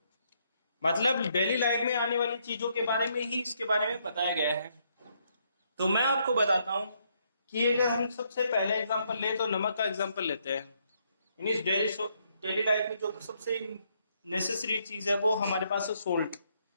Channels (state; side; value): inverted; both; correlation -0.73